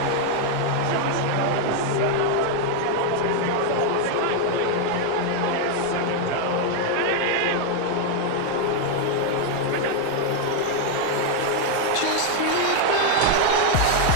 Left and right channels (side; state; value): both; different; correlation 0.00